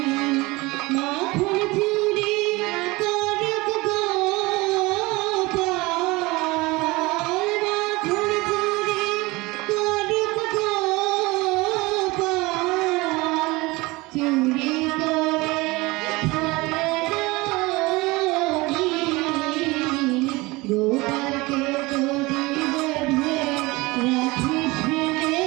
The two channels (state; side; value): quieter; left; 22.6 dB